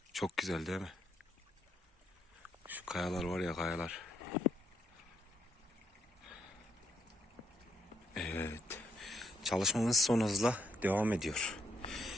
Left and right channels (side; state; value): both; normal; correlation 0.75